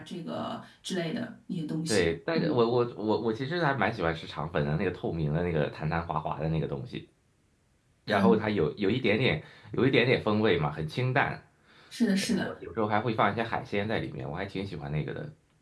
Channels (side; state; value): both; identical; correlation 1.00